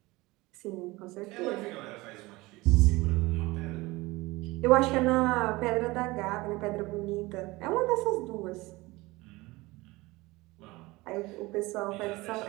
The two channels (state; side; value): quieter; left; 21.4 dB